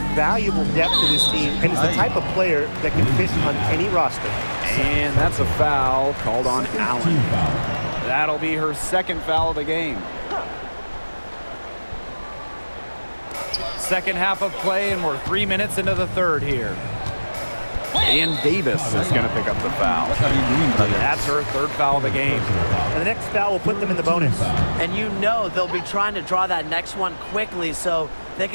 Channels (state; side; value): inverted; both; correlation -1.00